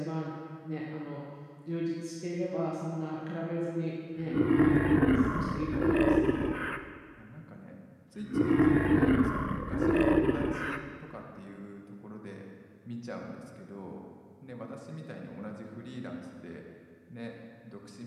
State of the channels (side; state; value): both; identical; correlation 1.00